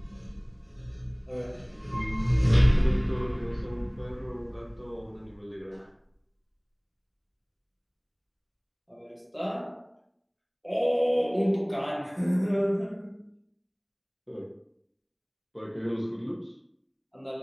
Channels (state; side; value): identical; both; correlation 1.00